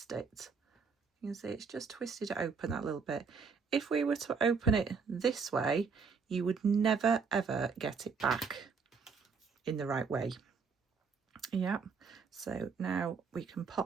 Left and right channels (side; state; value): left; quieter; 5.5 dB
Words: it You can see it's just twisted it open that little bit. If we were to open it this way, you would never ever get it back in the right way. Yeah, so now we can